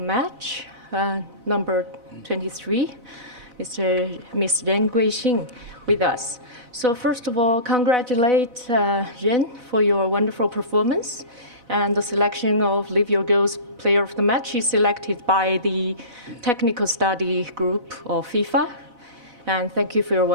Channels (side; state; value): left; late; 4.0 ms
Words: number 23, Mr. Ren Guixing, with us. So first of all, congratulate Ren for your wonderful performance. And the selection of Live Your Goals Player of the Match is selected by the technical study group of FIFA. And thank you for your